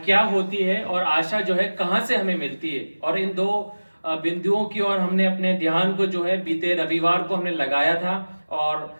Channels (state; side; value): inverted; both; correlation -1.00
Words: होती है और आशा जो है कहाँ से हमें मिलती है, और इन दो बिंदुओं की ओर हमने अपने ध्यान को जो है बीते रविवार को हमने लगाया था और